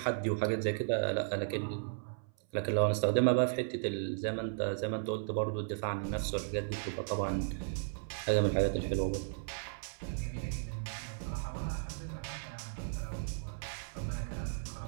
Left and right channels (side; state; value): left; silent; 54 dB below the other